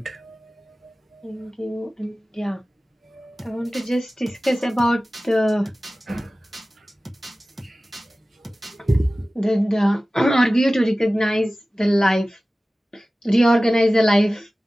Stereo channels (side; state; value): both; normal; correlation 0.96